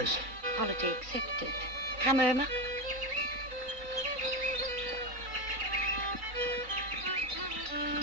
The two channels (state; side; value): late; left; 3.9 ms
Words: Apology accepted. Come, Irma.